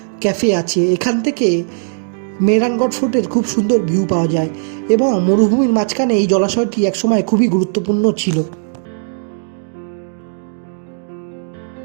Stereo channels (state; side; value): silent; left; digital silence